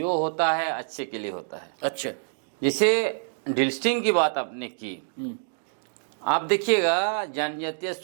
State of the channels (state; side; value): silent; left; digital silence